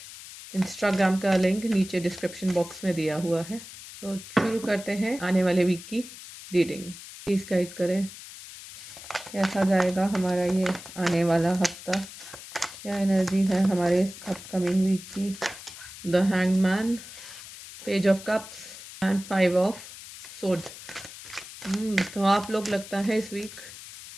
इंस्टाग्राम का लिंक नीचे डिस्क्रिप्शन बॉक्स में दिया हुआ है। तो शुरू करते हैं आने वाले वीक की रीडिंग। प्लीज़ गाइड करें कैसा जाएगा हमारा ये आने वाला हफ्ता, क्या एनर्जी है हमारे अपकमिंग वीक की। The hanged man, page of cups and 5 of swords. तो आप लोग लगता है इस वीक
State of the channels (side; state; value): left; noise; hiss, 14 dB below the sound